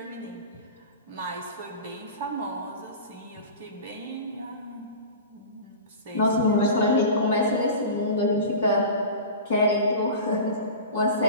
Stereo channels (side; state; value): both; inverted; correlation -0.33